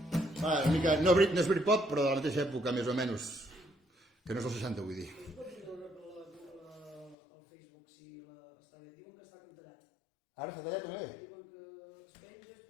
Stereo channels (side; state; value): right; drops out; at 7.2 s